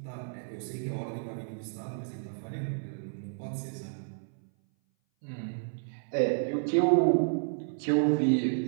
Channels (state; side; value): silent; left; 57 dB below the other